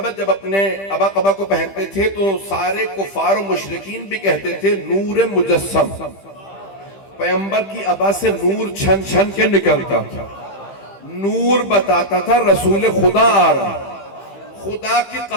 جب اپنے ابا قبا کو پہنتے تھے تو سارے کفار و مشرکین بھی کہتے تھے نور مجسم۔ پیغمبر کی ابا سے نور چھن چھن کے نکلتا تھا، نور بتاتا تھا رسول خدا آ رہا۔ خدا کی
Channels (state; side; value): late; right; 15 ms